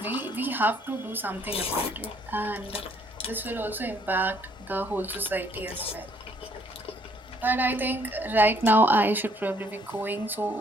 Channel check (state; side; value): normal; both; correlation 0.65